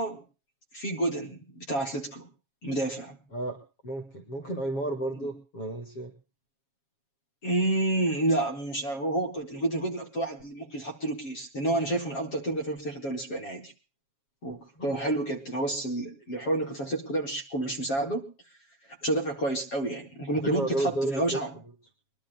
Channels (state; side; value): late; right; 7.3 ms